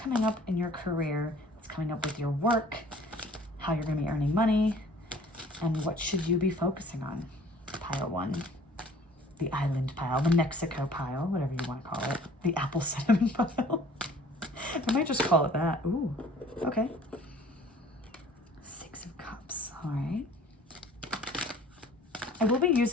up in your career? What's coming up with your work? How you're going to be earning money? And what should you be focusing on? Pile 1, the island pile, the Mexico pile, whatever you want to call it, the apple cinnamon pile. I might just call it that. Ooh, okay. 6 of Cups, all right. I will be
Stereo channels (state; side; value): normal; both; correlation 0.51